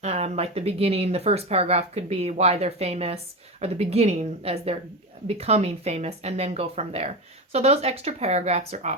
Like the beginning, the first paragraph could be why they're famous, or the beginning as they're becoming famous, and then go from there. So those extra paragraphs are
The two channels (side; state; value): both; normal; correlation 0.20